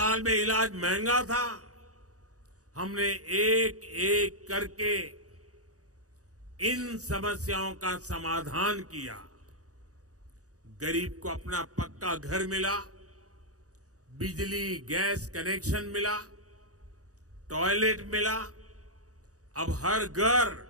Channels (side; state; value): left; late; 0.66 ms